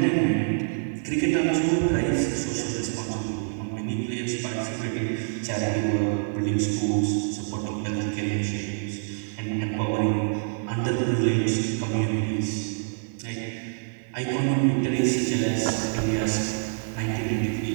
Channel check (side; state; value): left; silent; 58 dB below the other